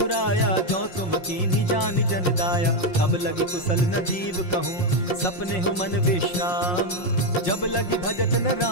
जो तुम कीन्ही जानि जन दाया। तब लगी कुशल न जीव कहूँ, सपने हो मन विश्राम। जब लगी भजत न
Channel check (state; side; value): late; right; 5.6 ms